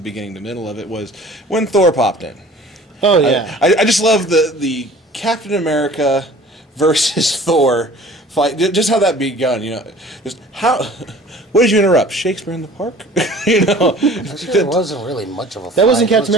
beginning, the middle of it was when Thor popped in. Oh yeah. I just love the Captain America versus Thor fight, just how that begun, just how. What did you interrupt? Shakespeare in the Park? Actually, it wasn't really much of a fight. That wasn't Captain It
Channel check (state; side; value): normal; both; correlation 0.47